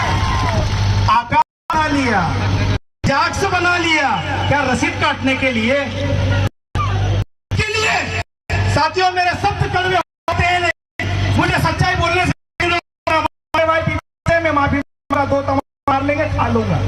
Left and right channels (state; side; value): identical; both; correlation 1.00